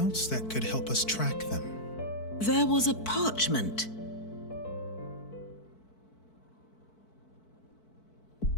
that could help us track them? There was a parchment.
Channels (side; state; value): right; late; 4.5 ms